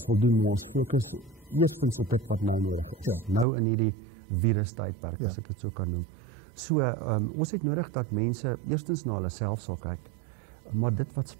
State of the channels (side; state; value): left; drops out; at 3.5 s